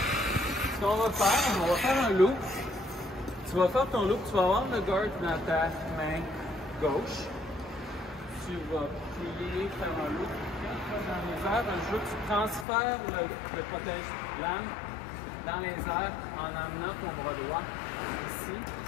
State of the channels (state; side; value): drops out; right; at 12.7 s